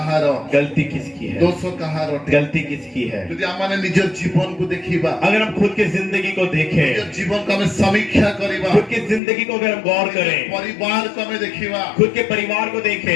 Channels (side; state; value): right; drops out; at 9.2 s